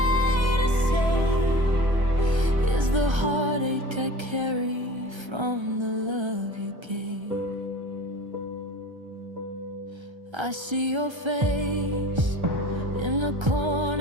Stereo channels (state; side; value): late; left; 1.3 ms